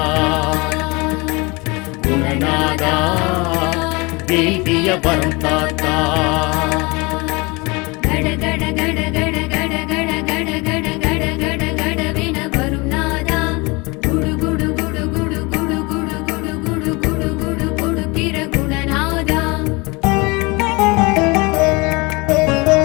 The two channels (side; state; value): right; quieter; 26.3 dB